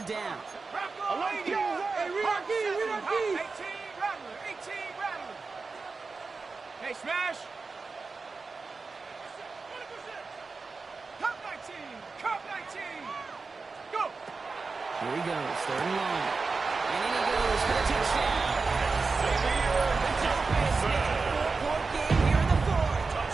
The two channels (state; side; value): quieter; left; 4.3 dB